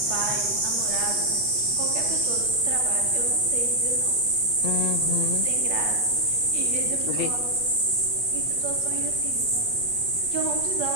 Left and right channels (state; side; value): late; left; 8.4 ms